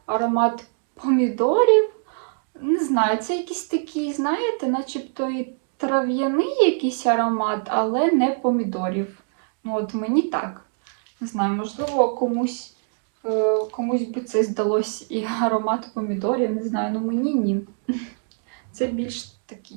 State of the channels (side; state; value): left; silent; digital silence